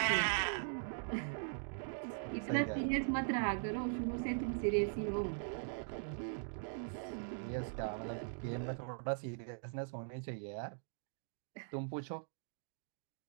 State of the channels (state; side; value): silent; left; digital silence